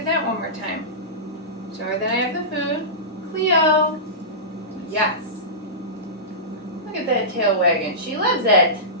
that one more time. Show her that I have the food. Cleo, yes. Look at that tail wagging. She loves it.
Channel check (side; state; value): both; normal; correlation -0.19